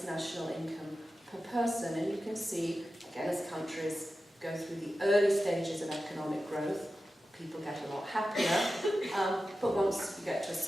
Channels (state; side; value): normal; both; correlation 0.93